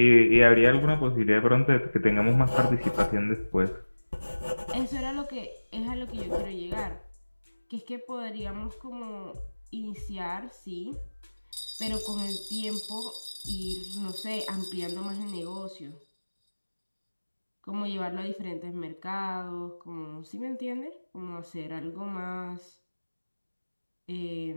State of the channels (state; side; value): inverted; both; correlation -1.00